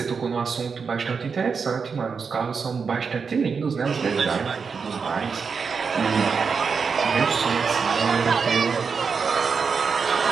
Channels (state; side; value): quieter; left; 5.6 dB